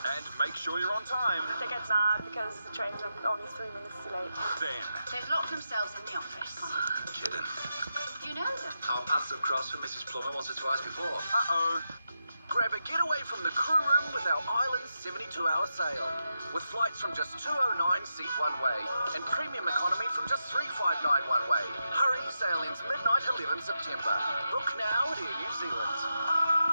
And make sure you're on time. They get mad because the trains are only 3 minutes too late. Then. They've locked themselves in the office. Kidding. You know them? Our paths have crossed with Mrs. Plummer once or twice before. Uh-oh. Grab a getaway from the crew room with our Island 72-hour sale. With flights from just $209 seat one way and premium economy from just $359 one way. Hurry, sale ends midnight 11 September. Book now at Air New Zealand.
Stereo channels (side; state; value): both; inverted; correlation -0.86